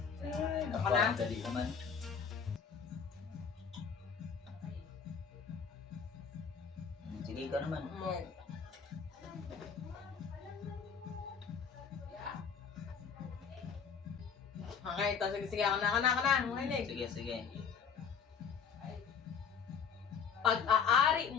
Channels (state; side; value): quieter; right; 6.6 dB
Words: Ako na. napakadali naman. Sige ka naman. Okay, ito. Sige. Ako na. Makinig. Sige. Pag-aari